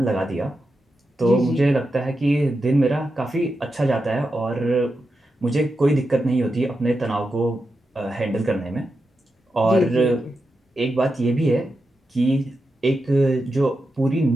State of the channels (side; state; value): both; normal; correlation 0.88